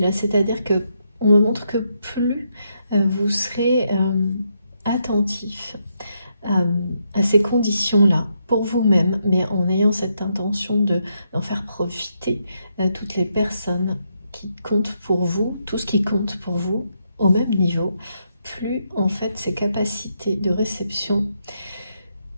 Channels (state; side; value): inverted; both; correlation -0.79